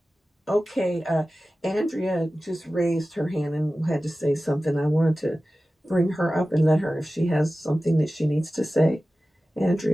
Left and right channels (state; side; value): normal; both; correlation 0.95